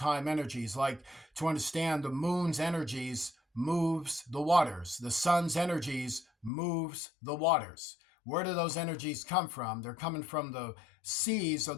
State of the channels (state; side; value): drops out; right; at 6.5 s